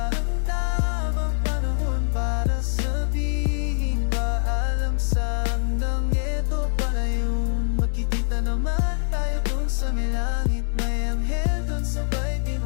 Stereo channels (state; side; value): silent; right; digital silence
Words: ang tamang panahon para sabihin paalam sa hanggang ito pala yun. Magkikita naman tayo dun sa may langit, may anghel dun sabay